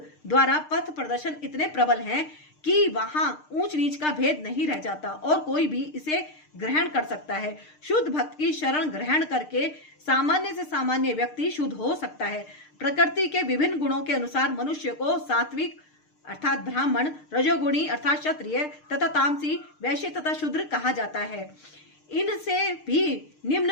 द्वारा पथ प्रदर्शन इतने प्रबल हैं कि वहां ऊंच नीच का भेद नहीं रह जाता और कोई भी इसे ग्रहण कर सकता है। शुद्ध भक्त की शरण ग्रहण करके सामान्य से सामान्य व्यक्ति शुद्ध हो सकता है। प्रकृति के विभिन्न गुणों के अनुसार मनुष्य को सात्विक अर्थात ब्राह्मण, रजोगुणी अर्थात क्षत्रिय तथा तामसी, वैश्य तथा शूद्र कहा जाता है। इनसे भी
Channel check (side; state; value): right; late; 6.6 ms